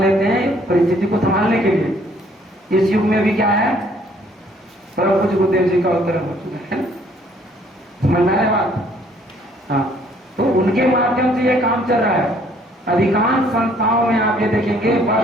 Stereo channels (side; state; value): both; normal; correlation 0.62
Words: हैं परिस्थिति को संभालने के लिए। इस युग में भी क्या है, परम पूज्य गुरुदेव जी का अवतरण हो चुका है, समझ में आ रहा है बात? हाँ, तो उनके माध्यम से ये काम चल रहा है। अधिकांश संस्थाओं में आप ये देखेंगे